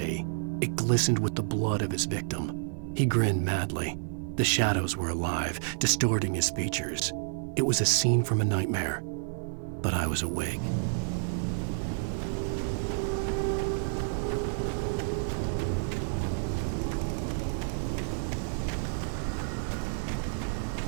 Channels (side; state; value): left; silent; digital silence